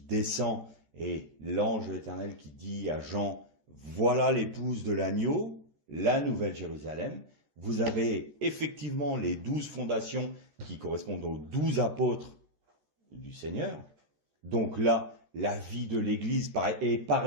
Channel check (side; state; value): left; late; 14 ms